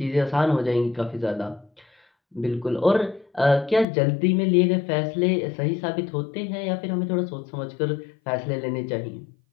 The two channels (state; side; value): drops out; right; at 3.9 s